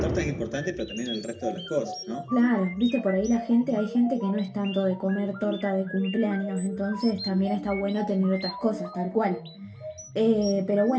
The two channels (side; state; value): both; identical; correlation 1.00